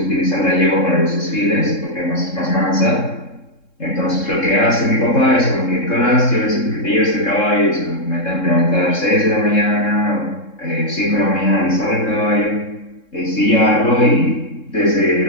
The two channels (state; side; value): late; right; 3.7 ms